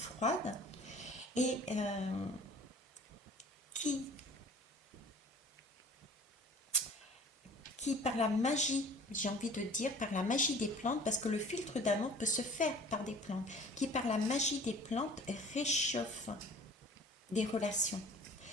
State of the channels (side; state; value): both; normal; correlation 0.47